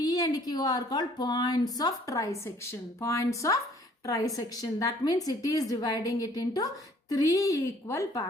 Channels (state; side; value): normal; both; correlation 0.58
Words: and Q are called points of trisection. Points of trisection. That means it is dividing it into 3 equal